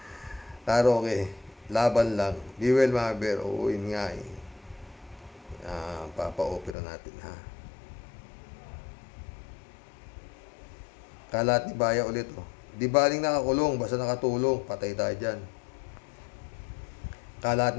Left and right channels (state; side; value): drops out; right; at 6.8 s